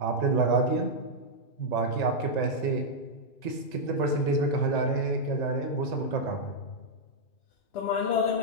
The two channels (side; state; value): right; late; 1.9 ms